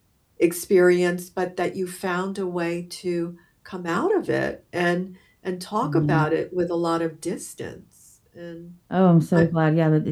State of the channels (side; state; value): both; identical; correlation 1.00